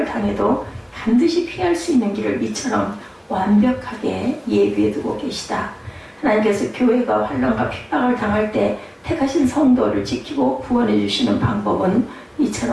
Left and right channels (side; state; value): both; identical; correlation 1.00